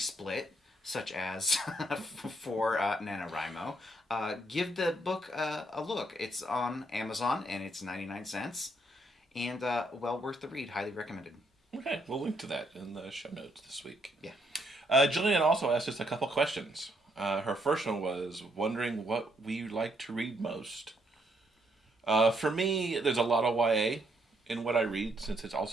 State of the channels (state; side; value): normal; both; correlation 0.73